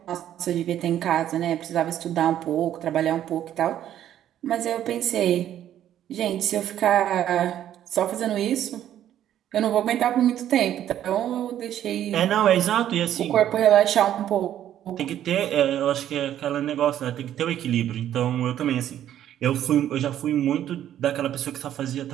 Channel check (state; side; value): quieter; left; 11.2 dB